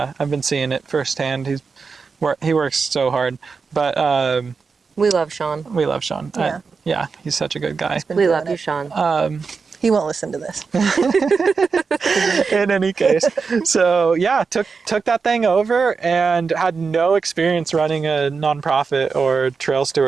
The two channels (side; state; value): left; quieter; 5.0 dB